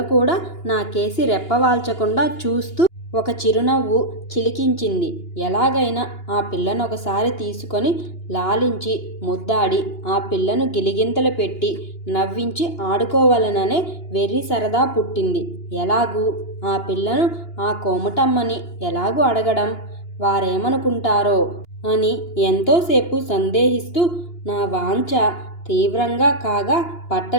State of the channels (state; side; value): late; right; 2.9 ms